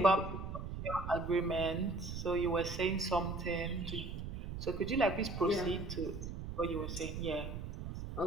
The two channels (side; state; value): right; noise; rumble, 6 dB below the sound